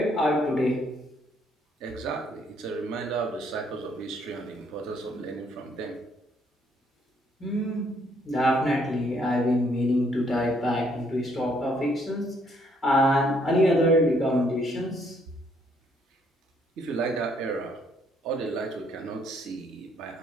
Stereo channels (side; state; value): both; normal; correlation 0.68